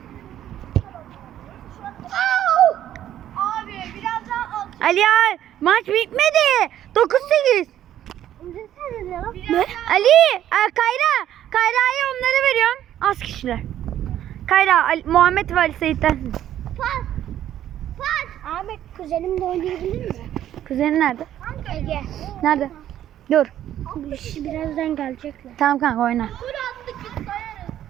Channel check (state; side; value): quieter; left; 11.6 dB